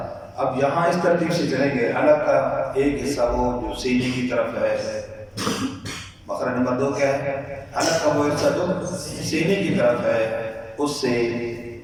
اب یہاں اس ترتیب سے چلیں گے، حلق کا ایک حصہ وہ جو سینے کی طرف ہے، مخرج نمبر 2 کیا ہے؟ حلق کا وہ حصہ جو سینے کی طرف ہے، اس سے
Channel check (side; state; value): both; identical; correlation 1.00